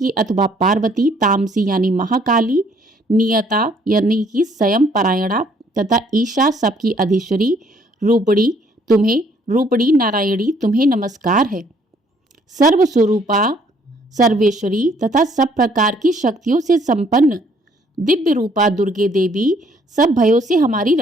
अथवा पार्वती, तामसी यानी महाकाली, नियता यानी कि स्वयं परायणा तथा ईशा सबकी अधीश्वरी रूपड़ी नारायणी तुम्हें नमस्कार है। सर्वस्वरूपा, सर्वेश्वरी तथा सब प्रकार की शक्तियों से संपन्न दिव्य रूपा दुर्गे देवी, सब भयों से हमारी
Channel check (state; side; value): normal; both; correlation 0.64